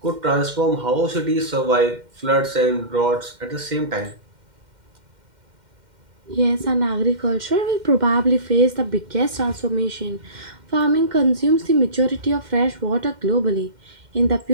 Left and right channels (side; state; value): left; late; 2.1 ms